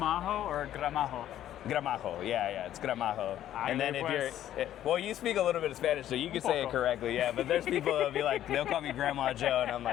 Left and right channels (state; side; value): quieter; right; 11.9 dB